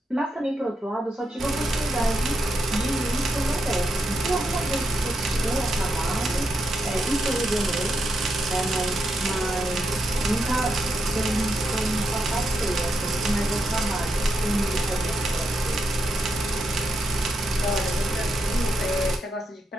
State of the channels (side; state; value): both; normal; correlation 0.83